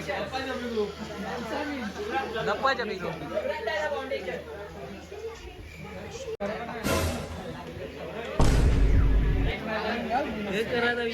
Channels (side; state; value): both; identical; correlation 1.00